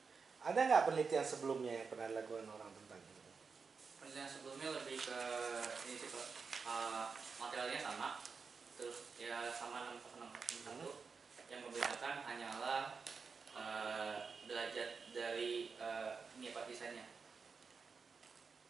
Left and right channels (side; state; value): left; quieter; 5.2 dB